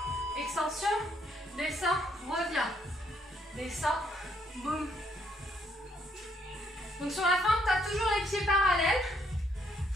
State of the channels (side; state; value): both; normal; correlation 0.71